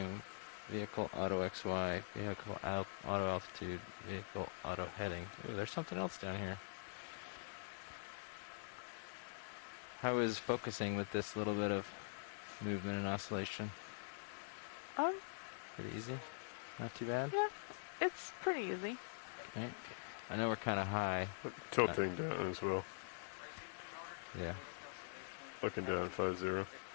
Vehicle auto XY, vehicle auto altitude, vehicle auto heading. Ooh, there's something else down here. How is focusing with this little bit of movement and oscillation? Pretty easy? Not too bad? Yeah, it's pretty easy. Okay. I know we're kind of high. Tilting down as well. Yeah. Looking down 5-0.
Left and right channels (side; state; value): right; silent; digital silence